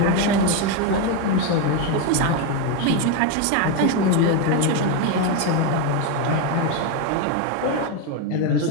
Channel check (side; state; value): both; different; correlation 0.03